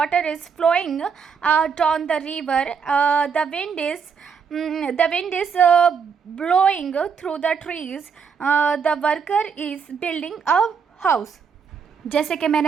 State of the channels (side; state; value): left; quieter; 6.2 dB